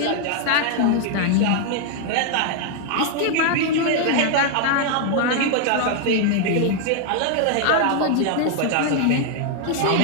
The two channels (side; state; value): both; different; correlation 0.00